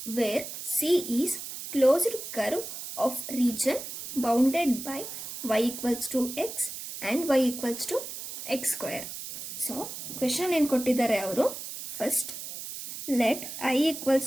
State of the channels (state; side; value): noise; right; hiss, 9 dB below the sound